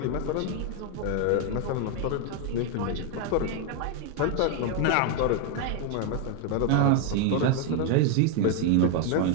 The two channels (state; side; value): different; both; correlation 0.01